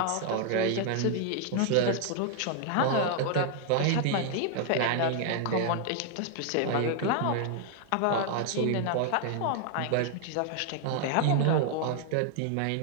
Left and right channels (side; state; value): both; different; correlation 0.00